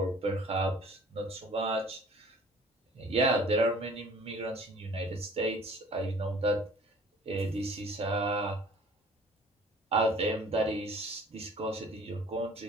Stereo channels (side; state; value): both; normal; correlation 0.50